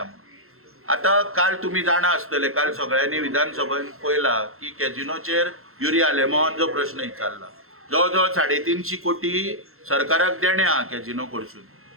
आतां काल तुमी जाणा आसतले काल सगळ्यांनी विधानसभेन पळयला की कॅजिनोचेर युरी आलेमावान प्रश्न विचारला. जवळ जवळ 350 कोटी सरकाराक देणे आहा कॅजिनो कडसून.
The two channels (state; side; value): late; left; 0.62 ms